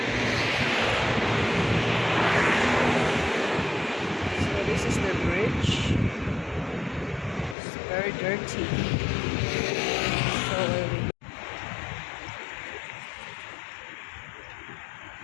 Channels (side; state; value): right; drops out; at 7.6 s